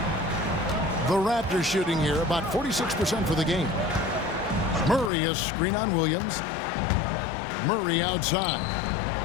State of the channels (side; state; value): right; drops out; at 5.1 s